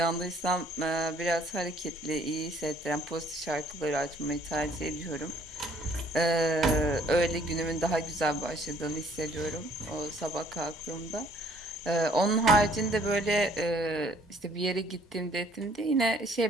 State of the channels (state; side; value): normal; both; correlation 0.60